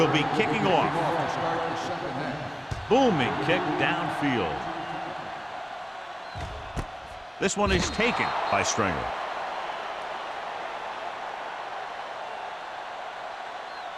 be kicking off. Booming kick downfield. This one is taken by Stringer.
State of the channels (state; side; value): identical; both; correlation 1.00